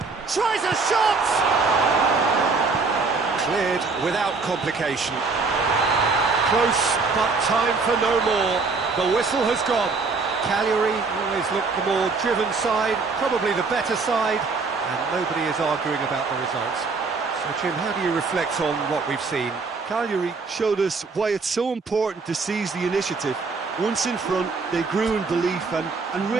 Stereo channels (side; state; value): left; quieter; 4.3 dB